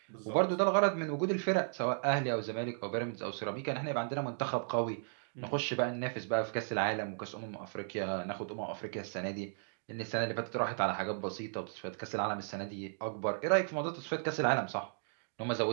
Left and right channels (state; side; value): silent; left; digital silence